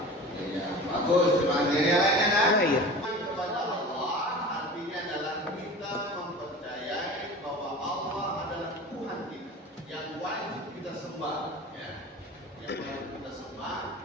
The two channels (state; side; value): normal; both; correlation 0.36